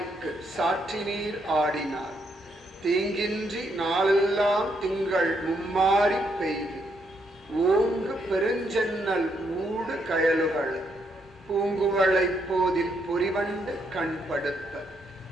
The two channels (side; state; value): both; normal; correlation 0.76